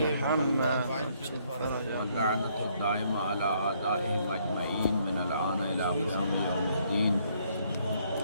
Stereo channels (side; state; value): both; inverted; correlation -0.68